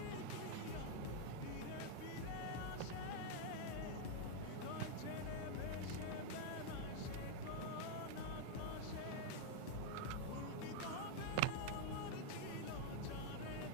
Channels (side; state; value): both; different; correlation 0.00